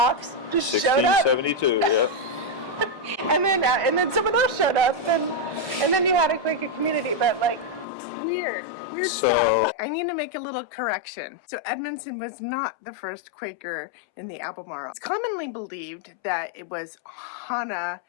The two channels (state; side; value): drops out; right; at 7.9 s